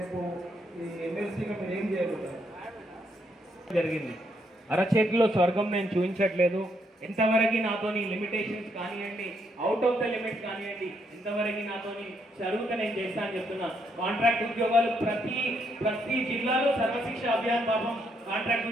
ఈ ఎమ్మెల్సీగా మీరు ఏం చేయగలుగుతారు? జరిగింది అరచేతిలో స్వర్గం నేను చూపించట్లేదు. ఎంతవరకు నాతోని లిమిటేషన్స్ కానివ్వండి, అవుట్ ఆఫ్ ద లిమిట్స్ కానివ్వండి, ఎంతవరకు నాతోని జరుగుతా నేను చేస్తా అని చెప్తున్నా. కాంట్రాక్ట్ ఉద్యోగాలు ప్రతి జిల్లాలో సర్వశిక్ష అభియాన్ పాపం కాంట్రాక్ట్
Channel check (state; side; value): normal; both; correlation 0.75